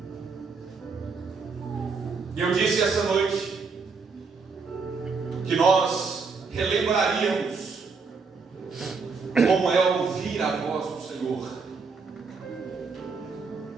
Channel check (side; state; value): left; quieter; 4.8 dB